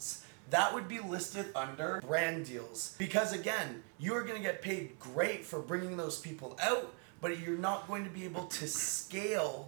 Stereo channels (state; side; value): quieter; left; 39.5 dB